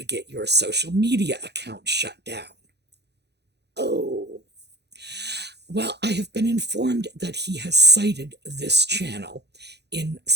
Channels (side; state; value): left; late; 0.49 ms